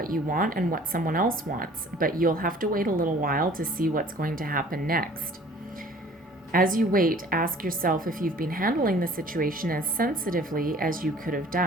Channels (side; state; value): both; normal; correlation 0.51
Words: you want and what someone else wants, but you'll have to wait a little while to see what's going to happen next. As you wait, ask yourself if you've been handling the situation as sensitively as you could have